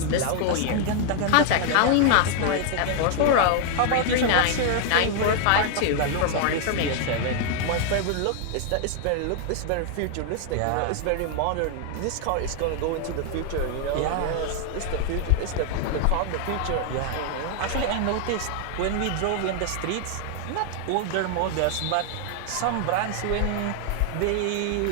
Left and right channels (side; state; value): both; different; correlation 0.00